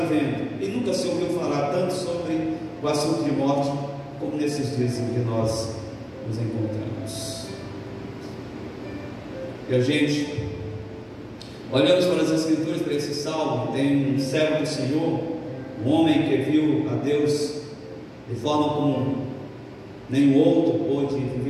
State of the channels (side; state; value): both; identical; correlation 1.00